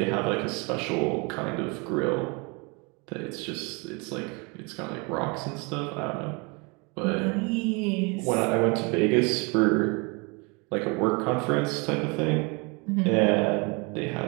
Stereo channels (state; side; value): quieter; left; 30.1 dB